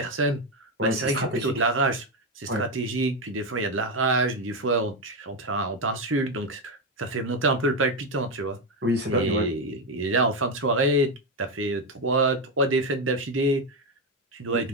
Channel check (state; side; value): normal; both; correlation 0.09